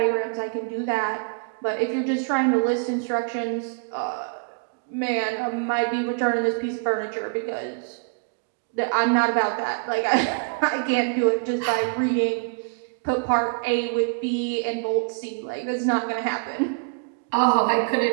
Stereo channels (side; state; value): left; quieter; 39.4 dB